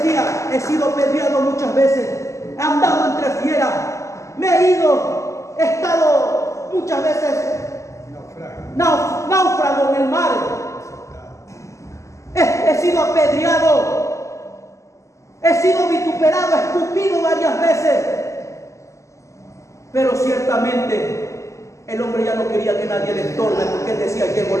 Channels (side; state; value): right; late; 0.15 ms